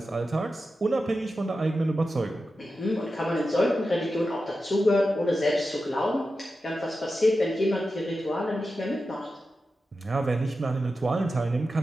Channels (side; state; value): both; normal; correlation 0.91